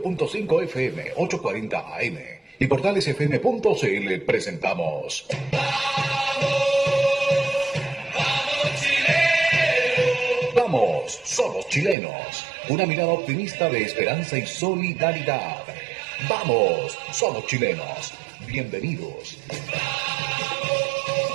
FM, 840 AM y portalesfm.cl presentamos Vamos, somos chilenos. Una mirada optimista de esperanza y solidaridad. Vamos, somos chilenos. Bienvenidos.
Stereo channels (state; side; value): drops out; left; at 12.0 s